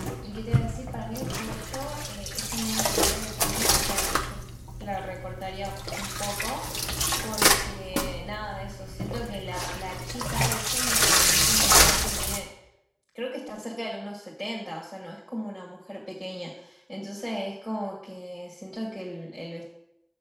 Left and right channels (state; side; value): identical; both; correlation 1.00